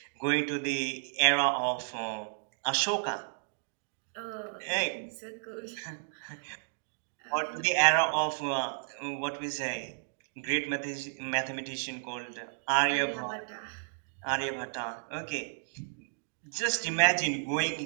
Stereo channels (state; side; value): silent; left; digital silence